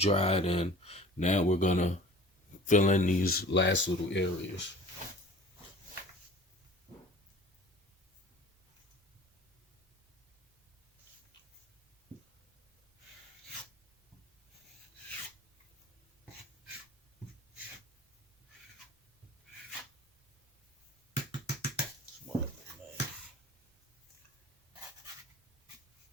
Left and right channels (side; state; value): both; normal; correlation 0.45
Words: and now we're gonna fill in these last little areas.